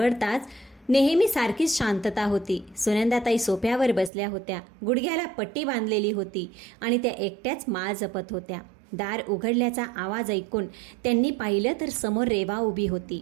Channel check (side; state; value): left; drops out; at 4.1 s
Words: नेहमी सारखीच शांतता होती. सुनंदाताई सोफ्यावर बसल्या होत्या. गुडघ्याला पट्टी बांधलेली होती आणि त्या एकट्याच माळ जपत होत्या. दार उघडल्याचा आवाज ऐकून त्यांनी पाहिलं तर समोर रेवा उभी